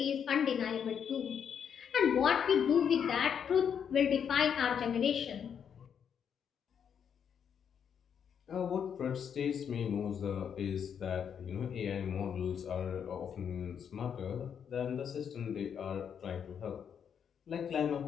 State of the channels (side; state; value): right; quieter; 7.8 dB